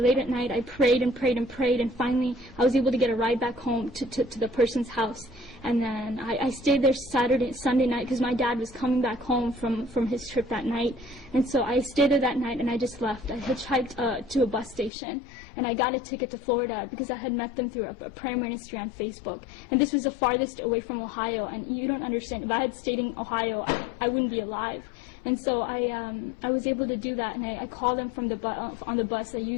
at night, I prayed and prayed and prayed, and finally I was able to get a ride back home to the person's house. And then I stayed there Sunday night, because my dad was coming back home from his trip that night. And so I stayed there that night, and I just left. I hitchhiked to a bus station, and I got a ticket to Florida because I had met them through a prayer ministry on Facebook. And this was the farthest away from Ohio, and you don't understand. If I had stayed in Ohio, I wouldn't be alive. And so I was able to do that, and I called them from on the bus. I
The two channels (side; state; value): right; drops out; at 14.9 s